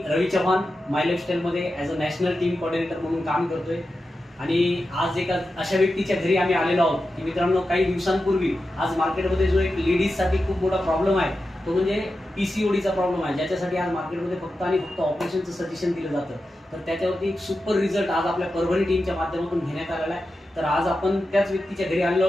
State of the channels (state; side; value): normal; both; correlation 0.91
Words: रवी चव्हाण माय लाईफस्टाईलमध्ये as a national team coordinator म्हणून काम करतोय. आणि आज एका अशा व्यक्तीच्या घरी आम्ही आलेलो आहोत की मित्रांनो, काही दिवसांपूर्वी आज मार्केटमध्ये जो एक लेडीजसाठी खूप मोठा प्रॉब्लेम आहे तो म्हणजे PCODचा प्रॉब्लेम आहे, ज्याच्यासाठी आज मार्केटमध्ये फक्त आणि फक्त ऑपरेशनचं सजेशन दिलं जातं. तर त्याच्यावरती एक सुपर रिझल्ट आज आपल्या परभणी टीमच्या माध्यमातून घेण्यात आलेला आहे. तर आज आपण त्याच व्यक्तीच्या घरी आलेलो